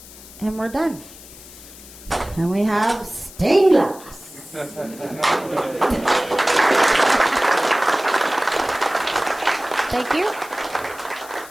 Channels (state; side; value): noise; left; hiss, 18 dB below the sound